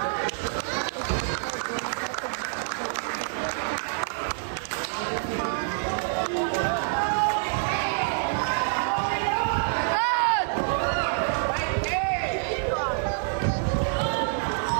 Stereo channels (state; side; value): silent; left; digital silence